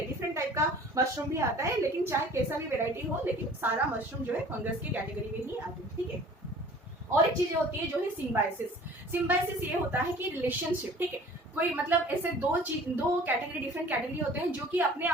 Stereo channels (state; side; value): normal; both; correlation 0.48